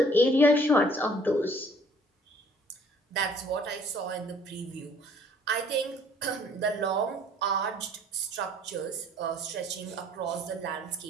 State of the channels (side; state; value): both; normal; correlation 0.57